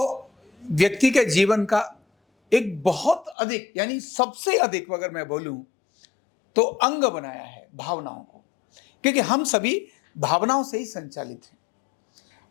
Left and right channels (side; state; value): right; drops out; at 3.4 s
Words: व्यक्ति के जीवन का एक बहुत अधिक यानी सबसे अधिक अगर मैं बोलूं तो अंग बनाया है भावनाओं को, क्योंकि हम सभी भावनाओं से ही संचालित हैं।